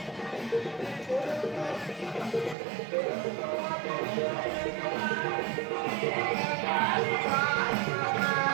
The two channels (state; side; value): drops out; left; at 2.6 s